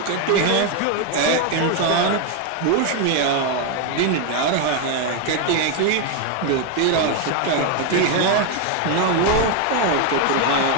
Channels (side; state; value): both; different; correlation 0.01